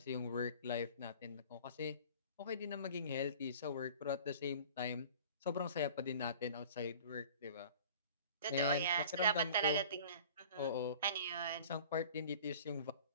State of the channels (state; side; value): inverted; both; correlation -0.45